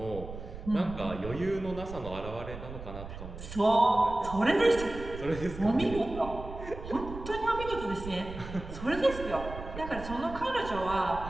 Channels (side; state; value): right; noise; rumble, 11 dB below the sound